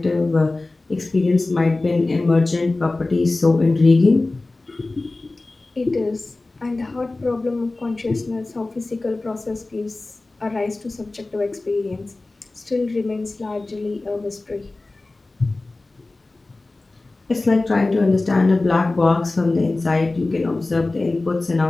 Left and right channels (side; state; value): right; quieter; 3.1 dB